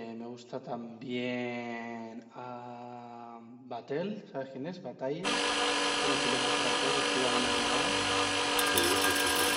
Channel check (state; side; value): identical; both; correlation 1.00